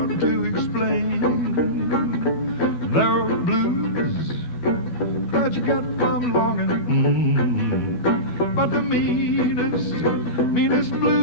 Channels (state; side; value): late; right; 12 ms